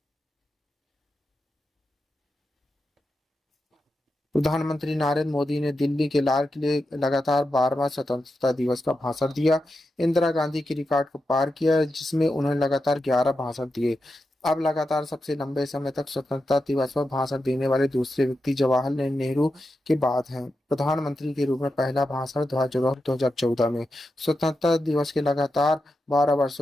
प्रधानमंत्री नरेंद्र मोदी ने दिल्ली के लाल किले लगातार 12वां स्वतंत्रता दिवस का भाषण दिया। इंदिरा गांधी की रिकॉर्ड को पार किया, जिसमें उन्होंने लगातार 11 भाषण दिए। अब लगातार सबसे लंबे समय तक स्वतंत्रता दिवस पर भाषण देने वाले दूसरे व्यक्ति जवाहरलाल नेहरू के बाद हैं। प्रधानमंत्री के रूप में पहला भाषण 2014 में। स्वतंत्रता दिवस के लगातार 12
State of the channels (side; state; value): both; normal; correlation 0.88